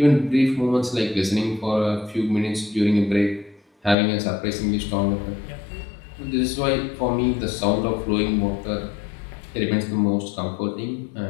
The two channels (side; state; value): right; drops out; at 4.0 s